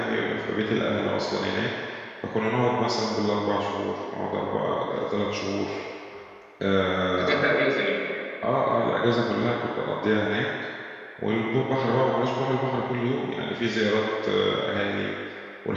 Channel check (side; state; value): both; identical; correlation 1.00